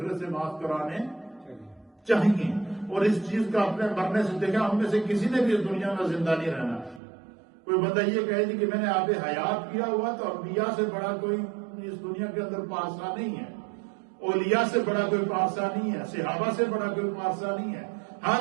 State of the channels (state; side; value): drops out; left; at 7.0 s